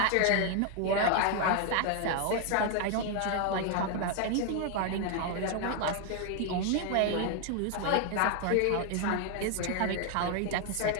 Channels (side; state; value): both; different; correlation 0.00